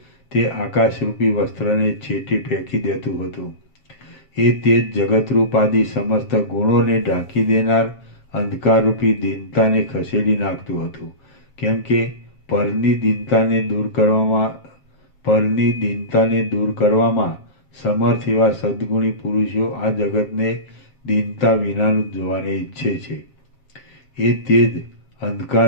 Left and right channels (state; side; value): late; right; 7.4 ms